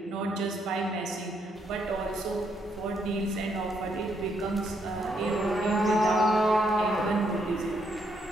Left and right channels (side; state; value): both; normal; correlation 0.75